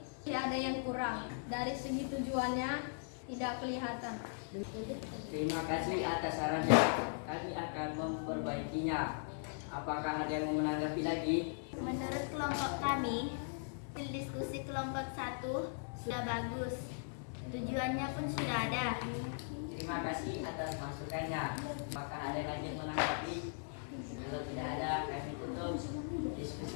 ada yang kurang. Dari segi tujuannya tidak kelihatan. Terima kasih atas sarannya. Kami akan memperbaikinya. Apakah ada yang mau menanggapi lagi? Menurut kelompok kami, hasil diskusi kelompok 1 sudah bagus. Tujuannya pun sudah ada. Terima kasih atas masukannya. Apakah ada lagi yang menanggapi? Kalau tidak ada, kami tutup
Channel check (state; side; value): silent; right; 52 dB below the other